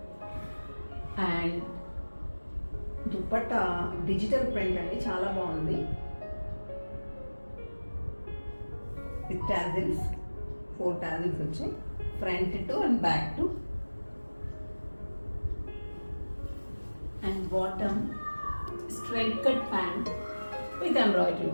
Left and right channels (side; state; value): both; inverted; correlation -1.00